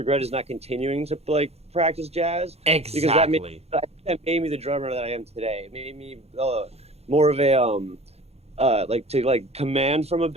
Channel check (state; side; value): late; left; 0.30 ms